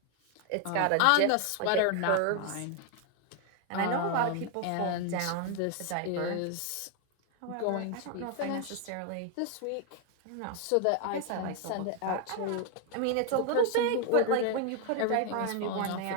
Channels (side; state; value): both; different; correlation 0.01